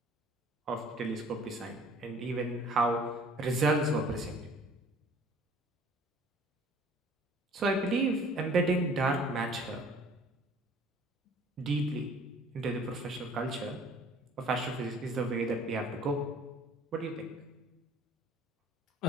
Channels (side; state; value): both; normal; correlation 0.52